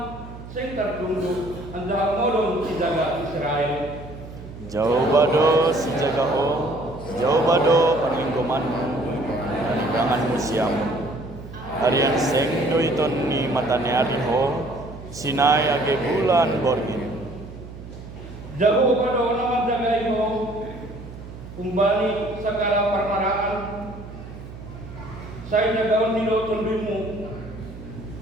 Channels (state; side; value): noise; right; hum, 14 dB below the sound